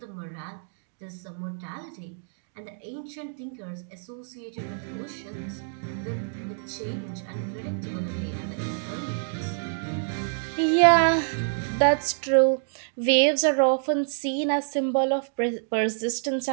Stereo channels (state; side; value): silent; left; digital silence